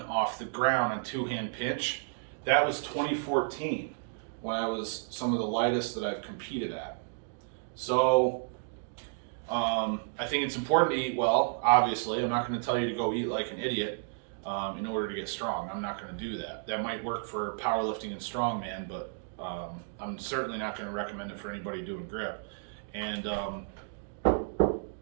off the ground on two-hand pinch, that was 2014 when I was some of the lightest that I've competed at. So I think it's important to eat well, obviously. I'm not going to tell you to go eat like an idiot in order to get strong. I'm not going to do that. That might work for powerlifting and strongman, but I'm certainly not going to recommend it for anybody doing grip. And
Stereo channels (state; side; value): silent; left; digital silence